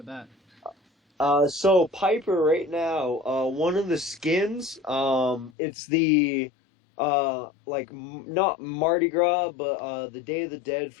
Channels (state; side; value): drops out; right; at 5.6 s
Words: that? So Piper right now, one of the skins, it's the, not Mardi Gras, but, the Day of the Dead